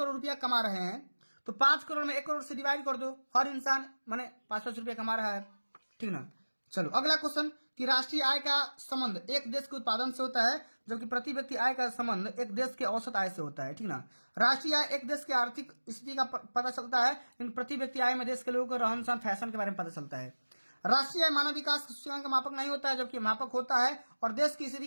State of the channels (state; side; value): inverted; both; correlation -1.00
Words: रुपया कमा रहे हैं, तो 5 करोड़ में 1 करोड़ से डिवाइड कर दो, हर इंसान माने 5-5 रुपया कमा रहा है, ठीक ना। चलो अगला क्वेश्चन कि राष्ट्रीय आय का संबंध एक देश के उत्पादन से होता है, जबकि प्रति व्यक्ति आय का संबंध एक देश के औसत आय से होता है, ठीक ना। राष्ट्रीय आय एक देश की आर्थिक स्थिति का पता चलता है, लेकिन प्रति व्यक्ति आय में देश के लोगों को रहन सहन फैशन के बारे में पता चलता है। राष्ट्रीय आय मानव विकास सूचकांक का मापक नहीं होता है, जबकि मापक होता है और देश की